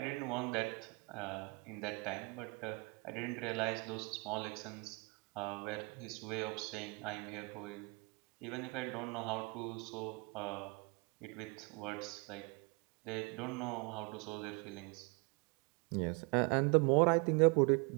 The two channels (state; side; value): quieter; left; 29.6 dB